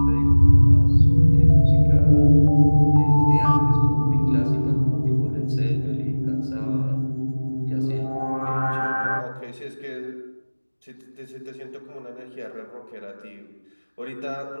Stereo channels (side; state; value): both; inverted; correlation -1.00